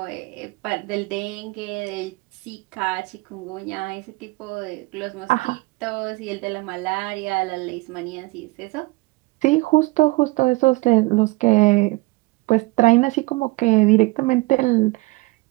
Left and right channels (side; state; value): left; quieter; 22.4 dB